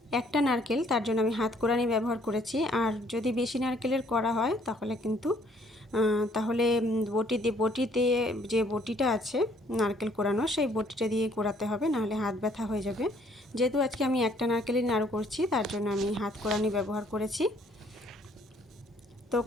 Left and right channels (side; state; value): both; normal; correlation 0.63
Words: একটা নারকেল, তার জন্য আমি হাত কোড়ানি ব্যবহার করেছি। আর যদি বেশি নারকেলের করা হয় তাহলে বটিতে যে বটিটা আছে নারকেল কোড়ানো, সেই বটিটা দিয়ে কোড়াতে হবে, নাহলে হাত ব্যথা হয়ে যাবে। যেহেতু আজকে আমি একটা নারকেলই নাড়ু করছি, তার জন্য আমি হাত কোড়ানি ব্যবহার করেছি। তো